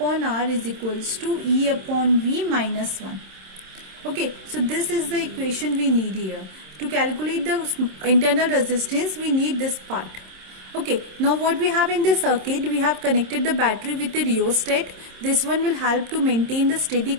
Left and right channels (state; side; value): late; left; 27 ms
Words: R is equals to E upon V minus 1. Okay, so this is the equation we need here. To calculate the internal resistance, we need this part. Okay, now what we have in this circuit, we have connected the battery with the rheostat. This one will help to maintain the steady